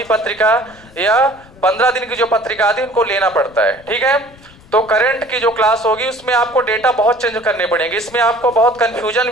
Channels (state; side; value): noise; left; rumble, 24 dB below the sound